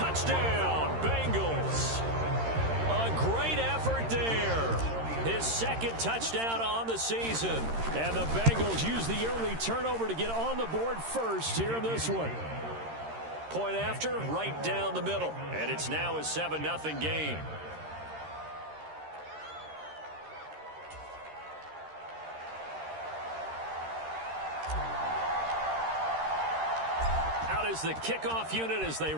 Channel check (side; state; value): left; late; 13 ms